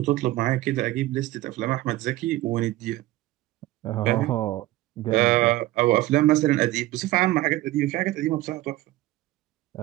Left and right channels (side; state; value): left; quieter; 17.2 dB